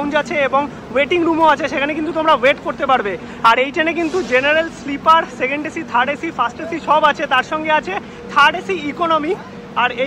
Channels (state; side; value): identical; both; correlation 1.00